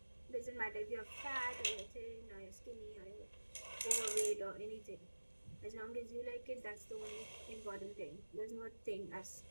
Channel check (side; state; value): both; inverted; correlation -1.00